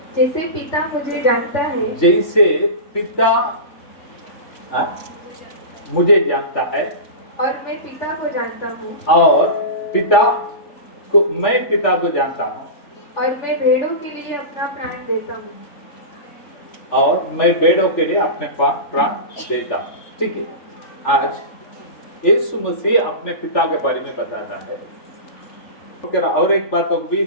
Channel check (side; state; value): right; late; 3.5 ms